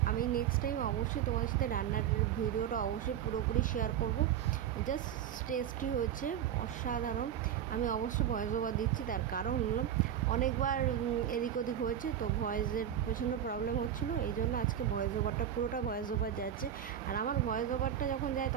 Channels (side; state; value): left; quieter; 9.9 dB